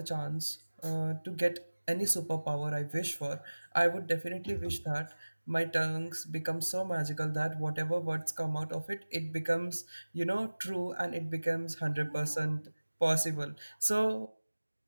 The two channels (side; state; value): both; inverted; correlation -1.00